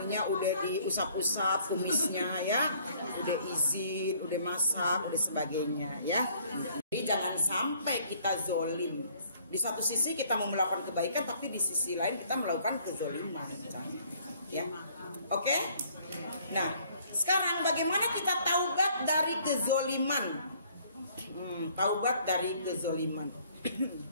udah diusap-usap kumisnya ya, udah izin, udah masak, udah sebagainya ya. Jadi jangan sampai kita zolim. Di satu sisi kita mau melakukan kebaikan, tapi di sisi lain kita melakukan kezoliman, ya. Oke? Nah, sekarang bagaimana kita taubat dari kezoliman? Taubat dari kezoliman.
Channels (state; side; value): inverted; both; correlation -0.61